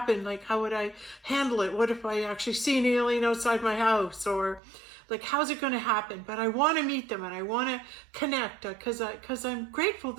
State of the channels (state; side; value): drops out; left; at 4.6 s